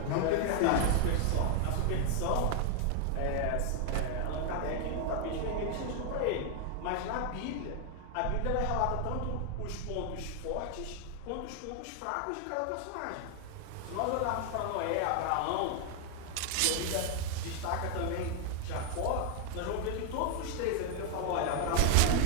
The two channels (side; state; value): both; different; correlation 0.00